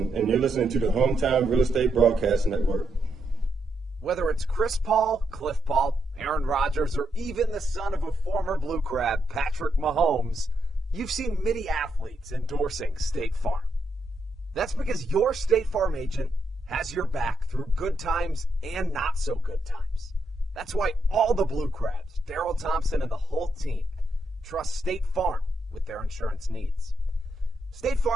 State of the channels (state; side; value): normal; both; correlation 0.79